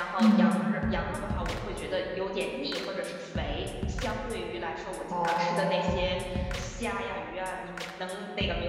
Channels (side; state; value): both; identical; correlation 1.00